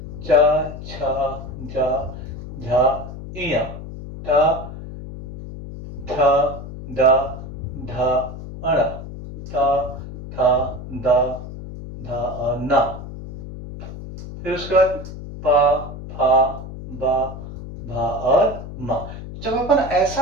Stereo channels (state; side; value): noise; left; hum, 11 dB below the sound